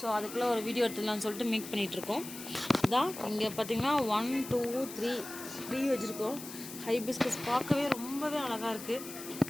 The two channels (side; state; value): left; noise; hiss, 12 dB below the sound